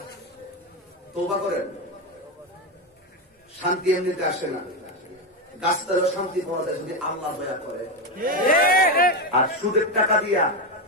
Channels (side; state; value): both; normal; correlation 0.11